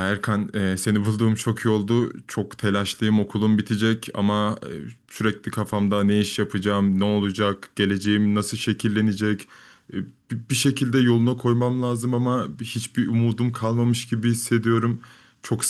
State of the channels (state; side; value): identical; both; correlation 1.00